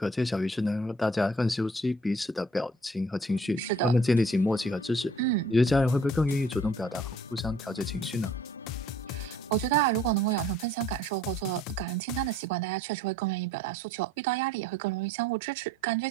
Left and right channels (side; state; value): both; normal; correlation 0.55